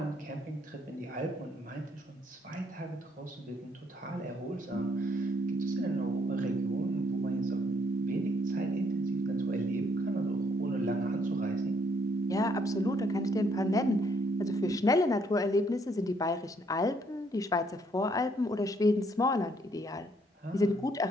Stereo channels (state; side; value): normal; both; correlation 0.69